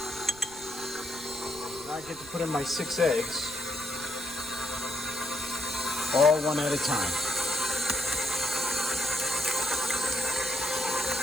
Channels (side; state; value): right; noise; rumble, 20 dB below the sound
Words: Now I get to put in my 6 eggs, all one at a time.